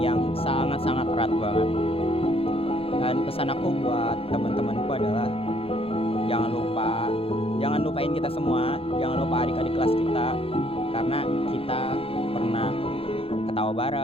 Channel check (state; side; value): late; right; 0.27 ms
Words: sangat-sangat erat banget. Dan pesan aku buat teman-temanku adalah jangan lupain kita semua, jangan lupa adik-adik kelas kita, karena kita pernah ketawa